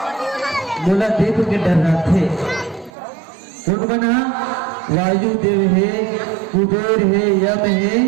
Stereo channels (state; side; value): drops out; left; at 2.9 s